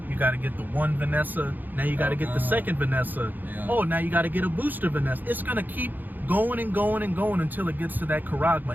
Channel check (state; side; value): late; left; 0.087 ms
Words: You gotta get the one Vanessa, now you gotta get the second Vanessa. Yeah. Oh, now you gotta get a booster Vanessa. It's gonna keep going and going and going until it gets to that